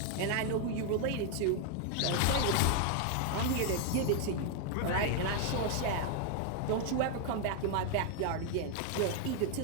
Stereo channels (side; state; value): both; different; correlation 0.00